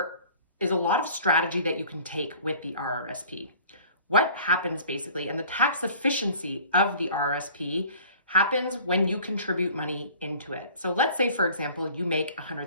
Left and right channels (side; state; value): both; inverted; correlation -0.48